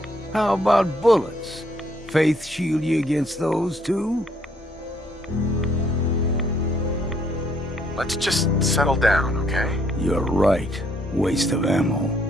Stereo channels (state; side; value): normal; both; correlation 0.67